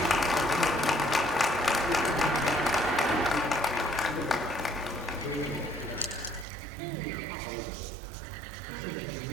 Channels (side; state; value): left; drops out; at 6.5 s